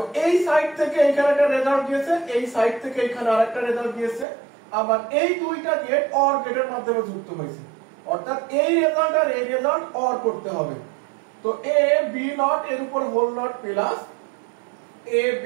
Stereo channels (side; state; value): left; drops out; at 4.2 s